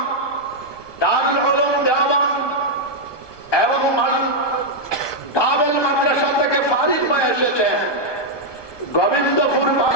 দারুল উলুম দেওবন্দ এবং দাবেল মাদ্রাসা থেকে ফারিগ হয়ে এসেছে, গোবিন্দপুর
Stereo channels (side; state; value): right; late; 1.2 ms